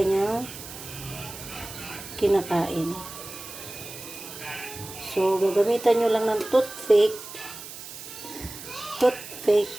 kinakain. So, gagamitan nyo lang ng toothpick toothpick.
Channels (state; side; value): noise; right; hiss, 12 dB below the sound